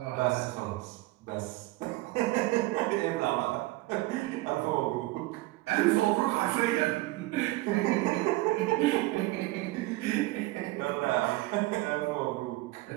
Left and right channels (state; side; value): quieter; left; 19.4 dB